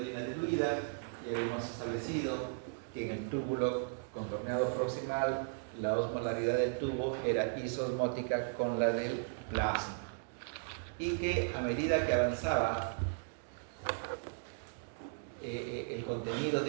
orina diluida. Ya habíamos establecido que en el túbulo contorneado proximal la osmolaridad del tubo era isosmótica con la del plasma, y que a medida que avanzaba el contenido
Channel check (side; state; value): left; silent; digital silence